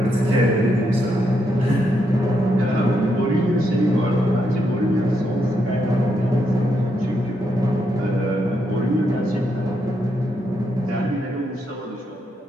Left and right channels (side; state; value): both; normal; correlation 0.79